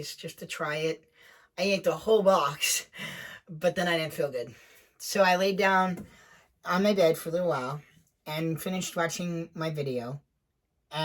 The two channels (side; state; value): both; identical; correlation 1.00